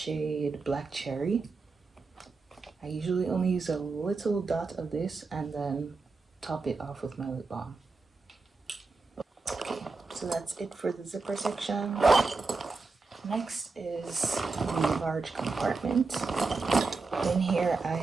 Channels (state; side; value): quieter; left; 4.0 dB